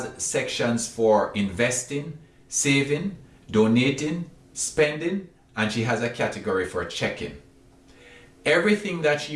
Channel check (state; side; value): identical; both; correlation 1.00